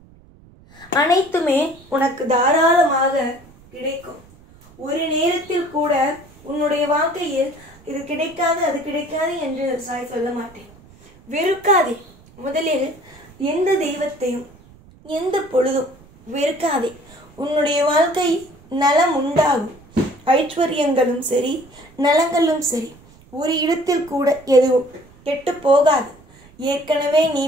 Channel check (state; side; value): noise; right; rumble, 25 dB below the sound